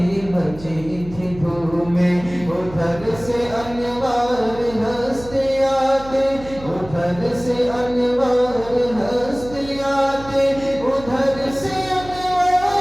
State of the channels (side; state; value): right; noise; hum, 16 dB below the sound